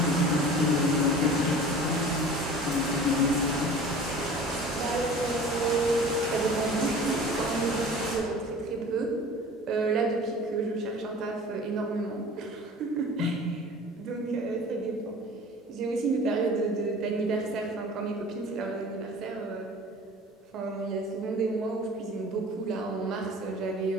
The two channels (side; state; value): both; normal; correlation 0.42